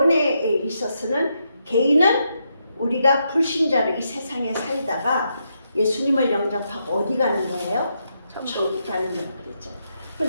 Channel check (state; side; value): inverted; both; correlation -0.81